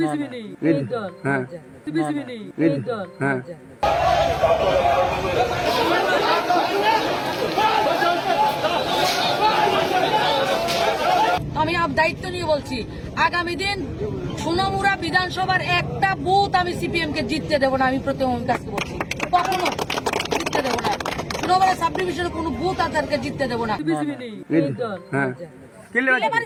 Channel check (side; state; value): both; identical; correlation 1.00